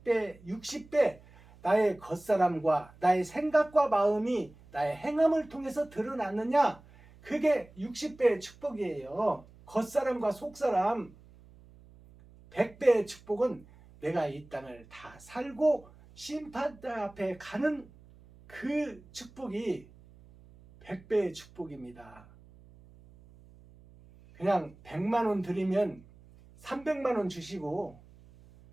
60배 나의 겉사람과 나의 생각과 마음이 나의 행함을 통해서 드러났느냐? 그게 60배의 축복이에요. 겉사람과 속사람. 100배의 축복은 내가 이 땅을 다 살고 심판자 앞에 가는 그 축복이 100배의 축복입니다. 그냥 100만 원 드리면 300만 원 주시고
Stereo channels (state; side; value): noise; right; hum, 24 dB below the sound